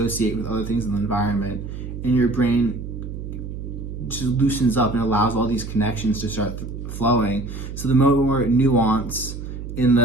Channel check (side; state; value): right; noise; hum, 8 dB below the sound